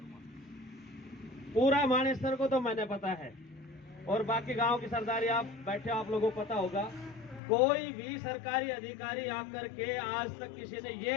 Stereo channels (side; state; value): right; drops out; at 7.4 s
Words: पूरा मानेसर को तो मैंने पता है, और बाकी गांव की सरदारी आप बैठे आप लोगों को पता होगा, कोई भी सरकारी अधिकारी आकर के आज तक किसी ने